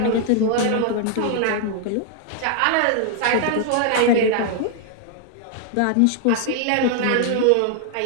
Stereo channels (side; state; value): both; different; correlation 0.00